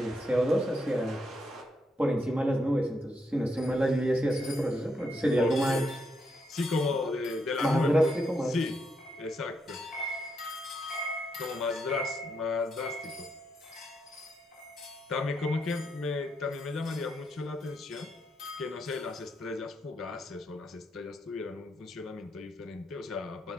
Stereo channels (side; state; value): both; normal; correlation 0.79